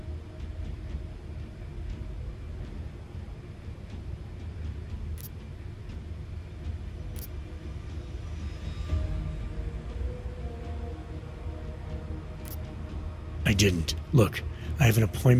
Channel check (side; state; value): both; identical; correlation 1.00